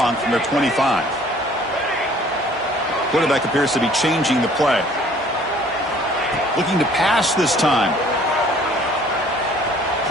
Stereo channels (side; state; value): both; normal; correlation 0.55